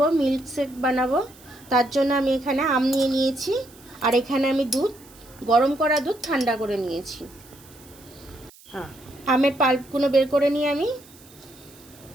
মিল্ক শেক বানাবো। তার জন্য আমি এখানে আম নিয়ে নিয়েছি, আর এখানে আমি দুধ, গরম করা দুধ ঠান্ডা করে নিয়েছি। আমের পাল্পগুলো বের করে নিয়ে আমি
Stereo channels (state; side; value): noise; right; hiss, 24 dB below the sound